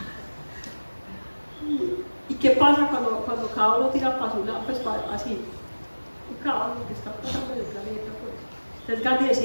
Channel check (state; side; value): inverted; both; correlation -1.00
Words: ¿Y qué pasa cuando cada uno tira para su lado, pues así? Cada uno que está pasando en el planeta, pues. Entonces Gandhi